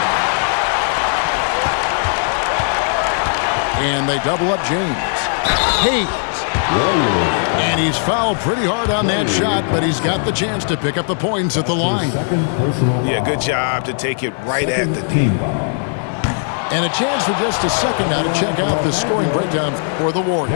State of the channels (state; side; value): silent; right; 62 dB below the other